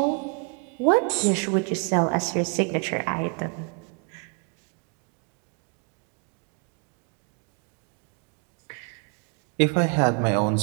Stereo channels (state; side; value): quieter; left; 35.0 dB